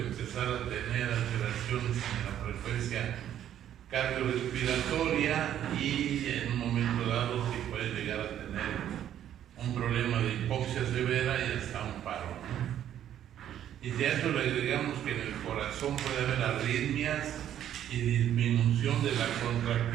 a tener alteraciones en la frecuencia cardiorrespiratoria y en un momento dado sí puedes llegar a tener un problema de hipoxia severa y hasta un paro, ¿no? Y si a eso le agregamos que en el corazón puede haber arritmias y disminución de la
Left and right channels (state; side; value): quieter; left; 10.8 dB